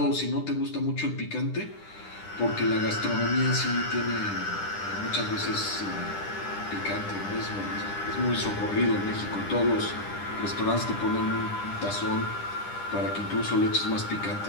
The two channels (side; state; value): right; late; 10 ms